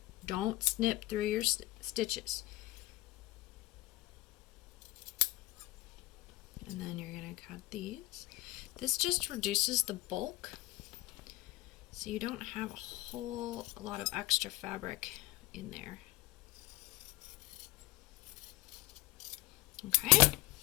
Don't snip through your stitches. And then you're going to cut these. This just reduces the bulk, so you don't have a whole lot of extra fabric in there. Okay.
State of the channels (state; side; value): quieter; right; 18.7 dB